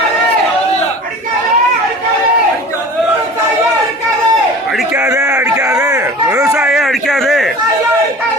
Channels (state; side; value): normal; both; correlation 0.40